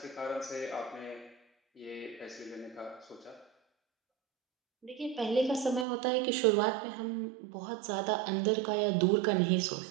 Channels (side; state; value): left; drops out; at 5.9 s